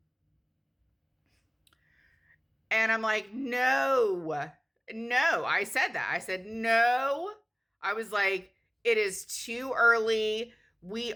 And I'm like, no. I said that. I said, no. I was like, it is too early. We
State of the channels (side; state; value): both; identical; correlation 1.00